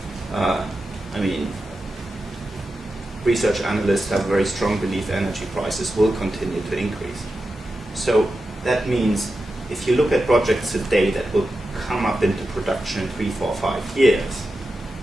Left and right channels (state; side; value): normal; both; correlation 0.91